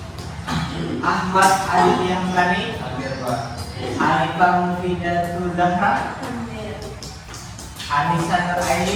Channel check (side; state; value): both; identical; correlation 1.00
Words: Ahmad Aditya Hamdani, hadir Pak. Arifah Mufidatul Zahra, Anissa Nur